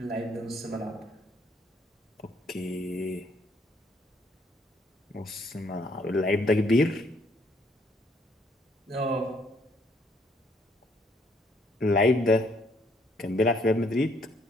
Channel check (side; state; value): both; normal; correlation 0.67